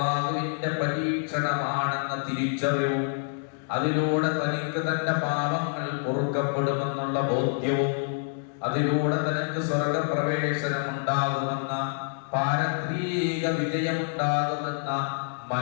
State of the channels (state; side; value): silent; right; digital silence